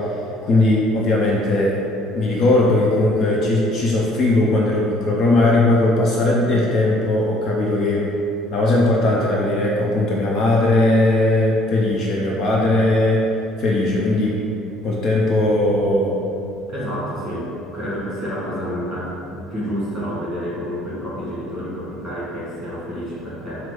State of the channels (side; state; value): both; normal; correlation 0.61